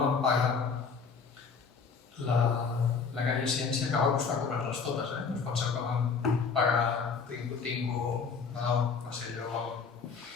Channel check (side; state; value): right; quieter; 5.5 dB